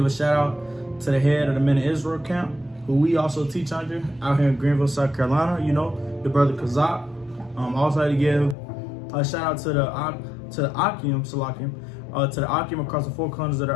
a shout out to the head of the Men of Israel camp, who we also teach under out here in Greenville, South Carolina, you know, the brother Kazak. I also like to give a shout out to the Akim, to the Akim across the four corners of the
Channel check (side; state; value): right; drops out; at 8.6 s